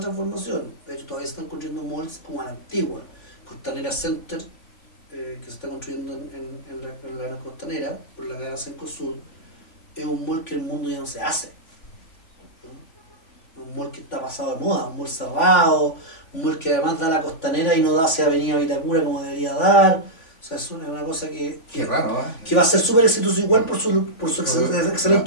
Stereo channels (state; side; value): late; right; 3.5 ms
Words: De hecho, todavía se están construyendo malls como a la antigua. Costanera Center, que se está construyendo en la costanera, por la cadena Cencosud, es un mall que el mundo ya no se hace. ¿No? Un mall que está pasado de moda, un mall cerrado, un mall que además da la costanera y no da hacia Avenida Vitacura como debería dar. O sea, es una cosa que raro, que va a ser súper exitoso igual por su